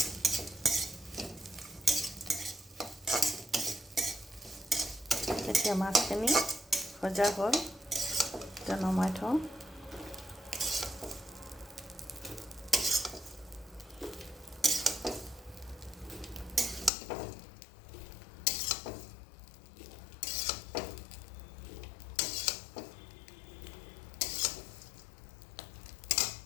এতিয়া মাছখিনি ভজা হ'ল, এতিয়া নমাই থওঁ।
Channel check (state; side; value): drops out; right; at 16.9 s